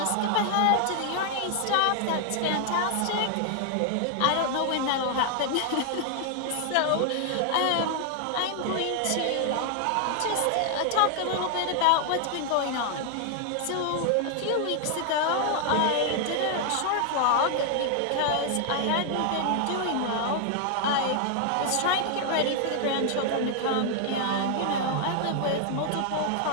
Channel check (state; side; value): different; both; correlation 0.00